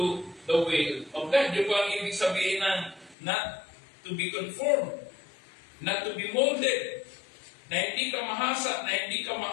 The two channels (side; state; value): right; drops out; at 3.2 s